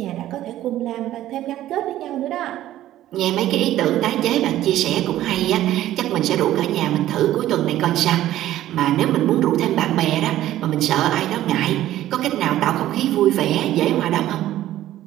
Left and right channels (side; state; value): left; quieter; 13.6 dB